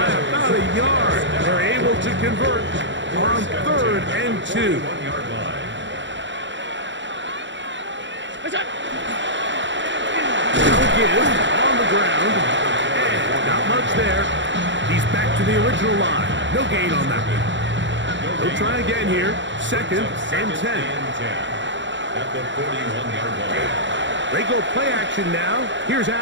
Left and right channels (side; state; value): left; late; 0.54 ms